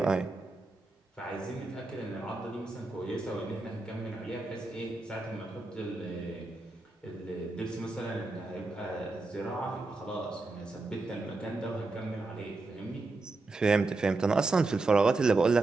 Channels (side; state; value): left; quieter; 3.4 dB